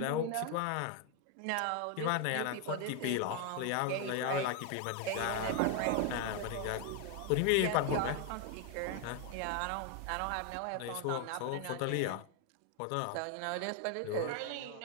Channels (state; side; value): different; both; correlation 0.01